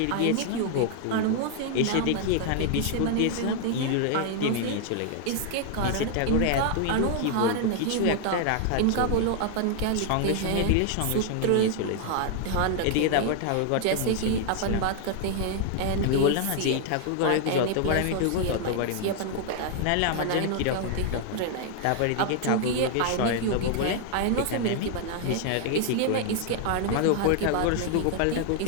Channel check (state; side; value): different; both; correlation 0.00